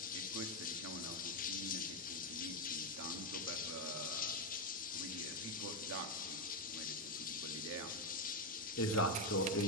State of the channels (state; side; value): normal; both; correlation 0.05